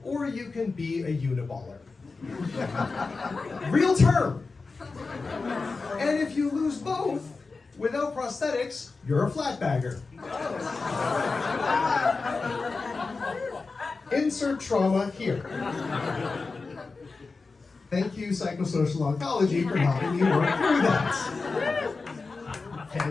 or you can be a uniballer. Real term. And if you lose both, without prosthetics, you're a flatbagger. Insert trauma here. Thank you, psychosocial oncology, for helping me work through that.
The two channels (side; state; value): right; quieter; 4.1 dB